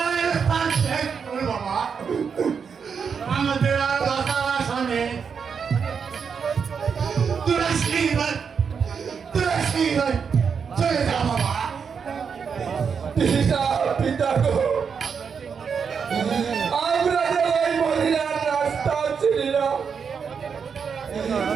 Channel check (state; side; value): quieter; left; 6.3 dB